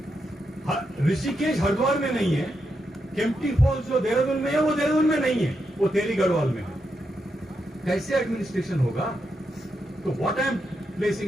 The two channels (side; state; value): both; normal; correlation 0.83